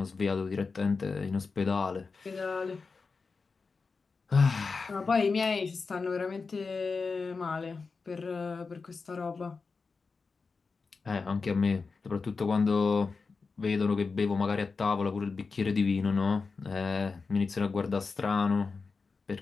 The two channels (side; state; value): right; quieter; 4.5 dB